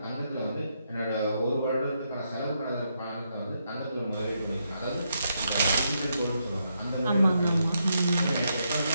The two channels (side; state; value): both; inverted; correlation -0.80